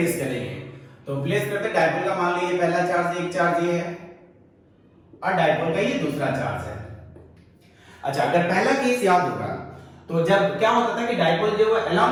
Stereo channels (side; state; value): both; identical; correlation 1.00